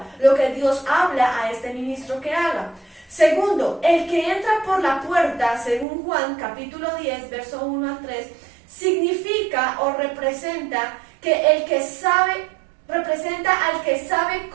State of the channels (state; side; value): drops out; left; at 5.9 s